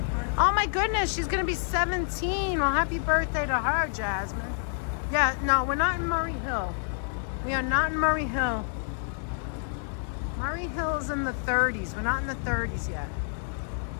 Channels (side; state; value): right; silent; 59 dB below the other